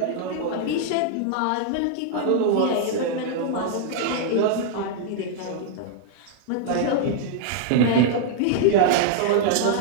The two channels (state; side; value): different; both; correlation -0.01